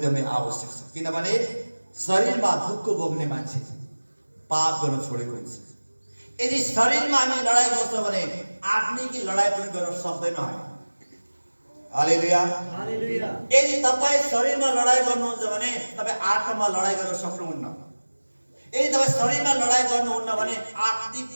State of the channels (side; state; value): both; inverted; correlation -1.00